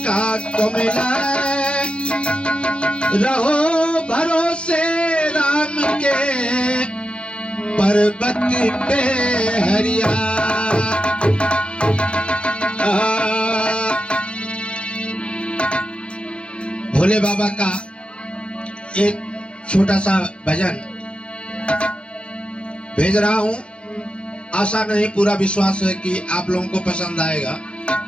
का कोमिला रहो भरोसे राम के पर्वत पे हरिया। भोले बाबा का एक छोटा सा भजन भेज रहा हूं। आशा नहीं पूरा विश्वास है कि आप लोगों को पसंद आएगा।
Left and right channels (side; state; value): right; late; 0.057 ms